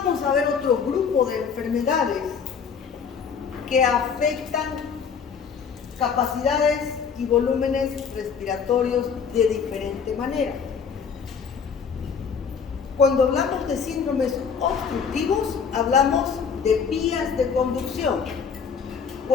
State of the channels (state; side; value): quieter; right; 6.4 dB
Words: a ver otro grupo de enfermedades que afectan capacidades y volúmenes respiratorios de diferente manera. Cuando hablamos de síndromes obstructivos, hablamos de vías de conducción.